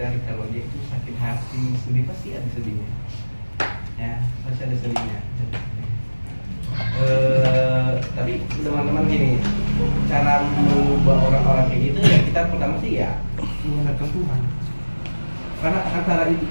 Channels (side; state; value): both; inverted; correlation -1.00